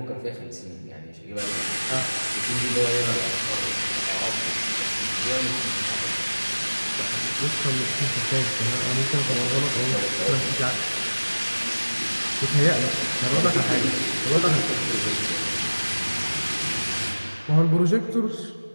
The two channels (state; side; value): inverted; both; correlation -1.00